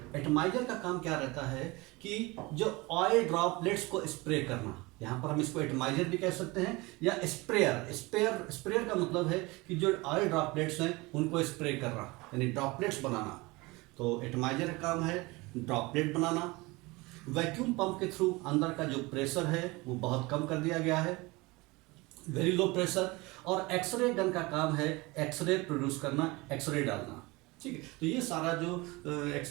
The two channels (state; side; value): quieter; left; 23.5 dB